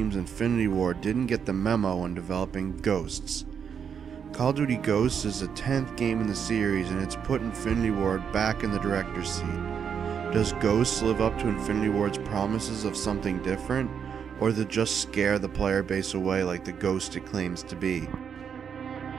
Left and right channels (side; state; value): left; quieter; 7.3 dB